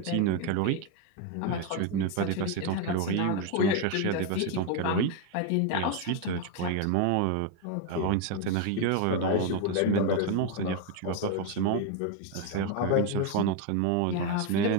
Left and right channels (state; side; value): different; both; correlation 0.01